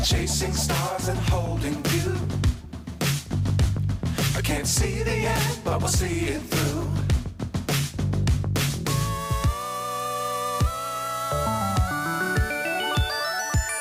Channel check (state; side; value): identical; both; correlation 1.00